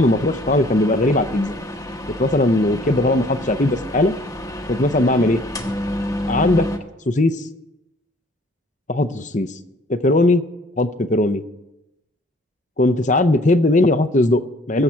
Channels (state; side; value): normal; both; correlation 0.56